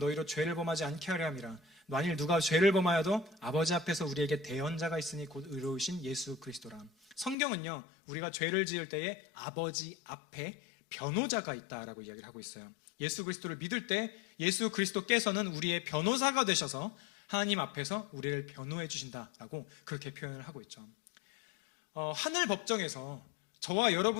죄를 범하지 않게 하려 함이라. 만일 누가 죄를 범하여도 아버지 앞에서 우리에게 대언자가 있으니 곧 의로우신 예수 그리스도라. 성경은요, 우리가 죄를 지을 때에 아버지 앞에 변호자가 있다라고 이야기를 하고 있어요. 예수 그리스도를 믿을 때 예수 그리스도께서는 우리의 변호사가 되셔서 하나님 앞에서 우리를 변호해 주신다라고 그렇게 표현을 하고 있죠. 하늘 법정에서 저와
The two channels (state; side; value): drops out; right; at 7.4 s